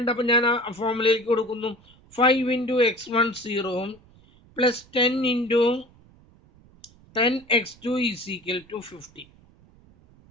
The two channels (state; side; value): noise; right; rumble, 27 dB below the sound